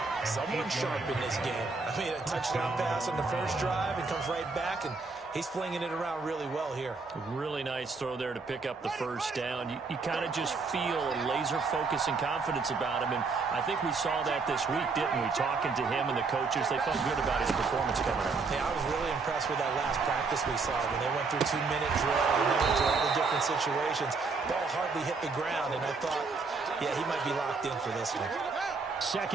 Someone sharp in this game. I mean, a touchdown pass on the first drive and comes right back, and he's flinging it around really well here. Really nice throw there to pick up the first down. You kind of just feel a laser focus and confidence about him, and I think we saw that this week, didn't we? Talking to him and the coaches, they felt good about his performance coming up. Yeah, I was really impressed with that last practice we saw when they went through 2-minute drill and they went through all the different situations. Ball hardly hit the ground, and I thought, yeah, he might be locked in for this one.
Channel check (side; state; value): left; quieter; 4.3 dB